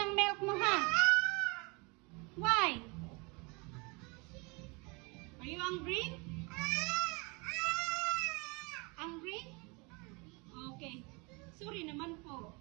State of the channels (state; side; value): quieter; left; 28.9 dB